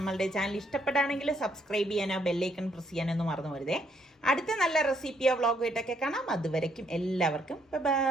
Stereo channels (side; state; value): both; normal; correlation 0.71